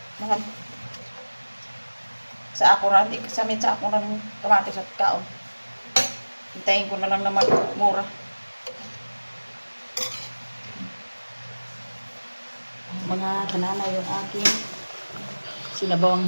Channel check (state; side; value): inverted; both; correlation -1.00